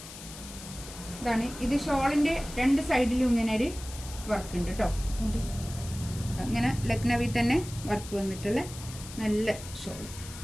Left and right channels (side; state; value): left; noise; hiss, 14 dB below the sound